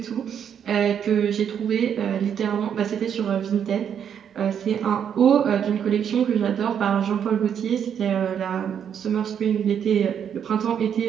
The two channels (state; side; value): quieter; left; 8.4 dB